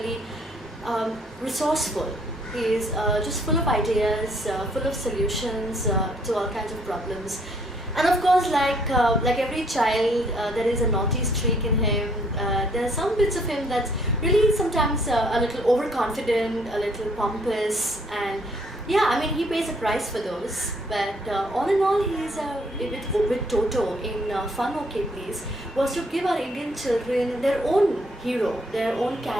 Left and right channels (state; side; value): normal; both; correlation 0.65